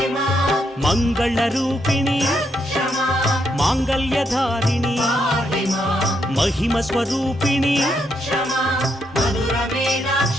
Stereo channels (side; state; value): both; normal; correlation 0.78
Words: మంగళ రూపిణి మాంగళ్యధారిణి మహిమ స్వరూపిణి